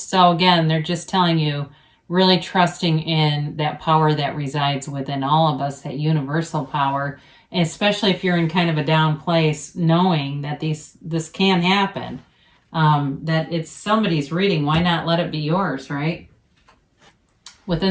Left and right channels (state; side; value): identical; both; correlation 1.00